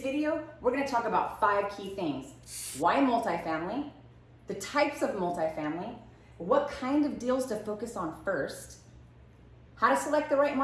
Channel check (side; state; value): both; identical; correlation 1.00